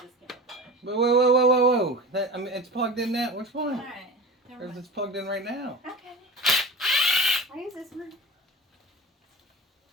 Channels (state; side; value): normal; both; correlation 0.32